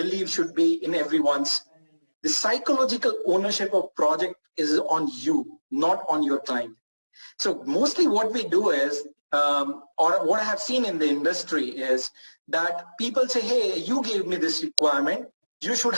should be in everyone's, the psychological ownership of project is on you, not on your client. So mostly what we do is, or what I have seen in the industry is that people say, hey, you gave me this requirement, you should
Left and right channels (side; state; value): both; inverted; correlation -1.00